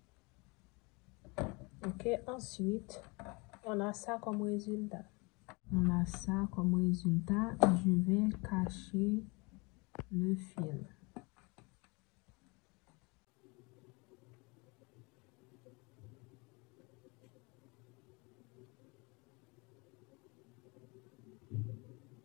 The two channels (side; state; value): right; quieter; 28.3 dB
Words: Ok, ensuite, on a ça comme résultat. Je vais cacher le fil.